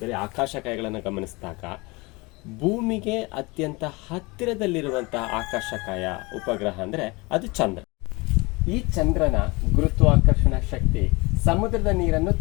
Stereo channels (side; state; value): right; quieter; 25.2 dB